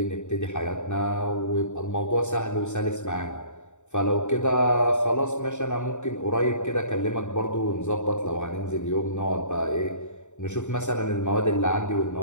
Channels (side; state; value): right; late; 0.84 ms